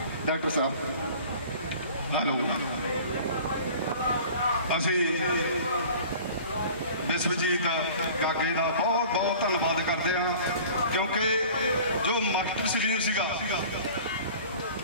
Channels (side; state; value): both; inverted; correlation -0.44